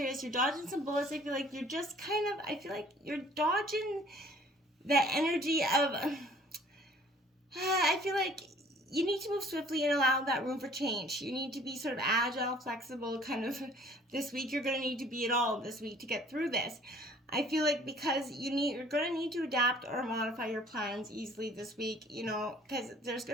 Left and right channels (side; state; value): both; normal; correlation 0.54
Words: You're dodging some bullets. I feel like you're just I feel like you're dodging that energy of, I feel like you need to move swiftly and allow that room for change. You need to be sort of agile, flexible, kind of this week. You're going to need to be it all this week to get through this. I feel like because you're going to need to adapt or modify your plans easily this week, because there's